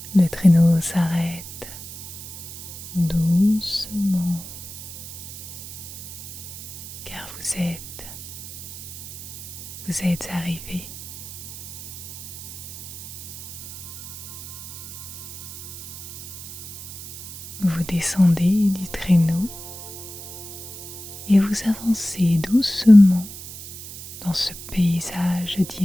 Le traîneau s'arrête doucement car vous êtes arrivé. Vous descendez du traîneau et vous avancez doucement dans ce paysage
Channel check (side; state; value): right; noise; hiss, 11 dB below the sound